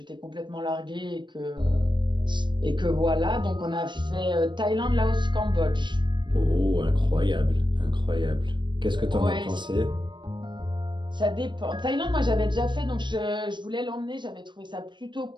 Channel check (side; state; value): left; late; 0.22 ms